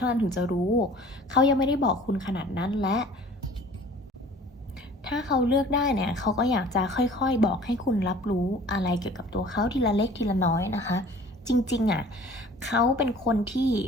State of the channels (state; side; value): normal; both; correlation 0.48